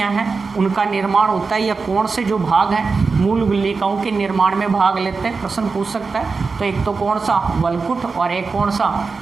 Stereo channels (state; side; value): quieter; left; 4.5 dB